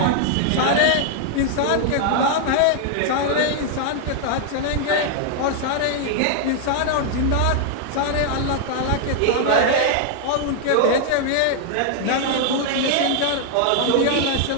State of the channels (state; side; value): different; both; correlation 0.00